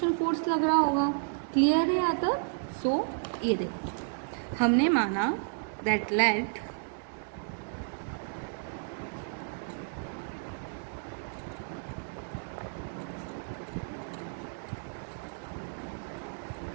फोर्स लग रहा होगा। क्लियर है यहाँ तक? सो ये देखो हमने माना दैट लेट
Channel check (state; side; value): silent; left; digital silence